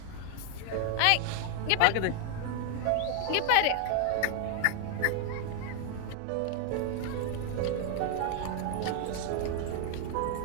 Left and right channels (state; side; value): different; both; correlation 0.00